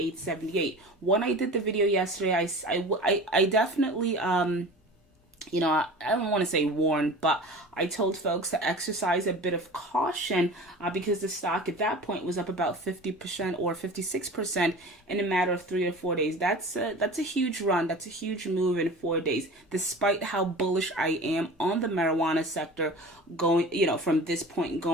When I did the video yesterday, I definitely, you know, I don't want to say warned, but I told folks to exercise a bit of caution because the stock at that point was up about 50% or 56% in a matter of 3 or 4 days. That's a huge run. That's a huge move in 4 days, despite how bullish I am on the marijuana sector going, you know, from this point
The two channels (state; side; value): normal; both; correlation 0.37